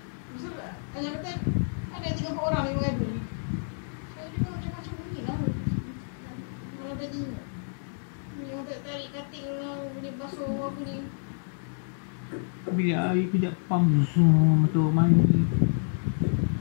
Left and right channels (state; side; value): silent; right; digital silence